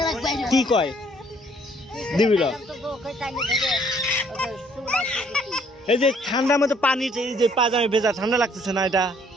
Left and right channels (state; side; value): normal; both; correlation 0.62